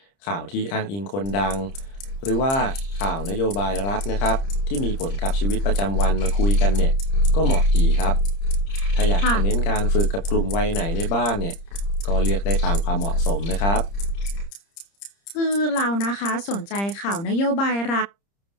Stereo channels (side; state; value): right; late; 30 ms